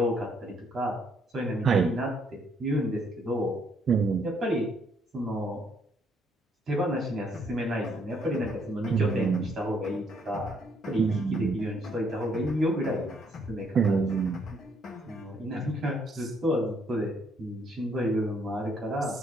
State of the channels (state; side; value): normal; both; correlation 0.69